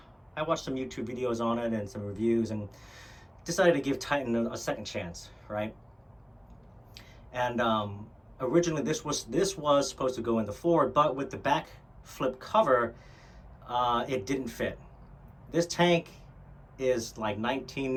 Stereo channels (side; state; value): both; identical; correlation 1.00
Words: I watched some YouTube videos on it and some reviews, and decided to give Titan a second chance, right? And originally this was supposed to go in the Ford, but with the back flip cover, it didn't fit. This tank is like